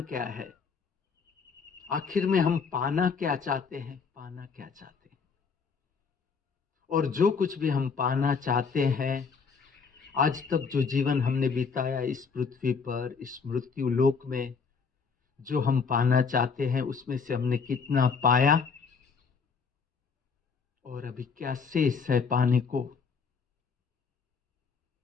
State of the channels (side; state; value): right; quieter; 5.4 dB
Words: क्या है? आखिर में हम पाना क्या चाहते हैं? पाना क्या चाहते हैं? और जो कुछ भी हम पाना चाहते हैं, आज तक जो जीवन हमने बिताया इस पृथ्वी पर, इस मृत्यु लोक में, जो हम पाना चाहते हैं उसमें से हमने कितना पाया और अभी क्या शेष है पाने को?